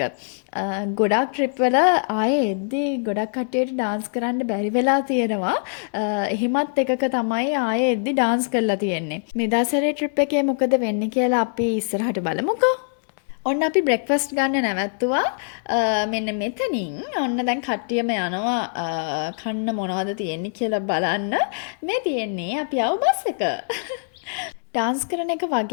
ගොඩක් ට්‍රිප් වල ආයේ එද්දී ගොඩක් කට්ටියට ඩාන්ස් කරන්න බැරි වෙලා තියෙනවා. එහෙමත් එකක තමයි ආයේ එද්දී ඩාන්ස් කරලා තියෙන්නේ. මේ දවසේ ට්‍රිප් එකේ මොකද වෙන්නේ කියලා අපි ඉස්සරහට බලමුකෝ. ඔන්න අපි බ්‍රෙක්ෆාස්ට් ගන්න නැවැත්තුවා. මෙන්න මෙතනින් ඔන්න දැන් කට්ටියම යනවා කන්න මොනවද තියෙන්නේ කියලා බලන්න. මේ තියෙන්නේ අපි ආව බස් එක. ඩාන්ස් කරන එක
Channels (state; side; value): silent; right; digital silence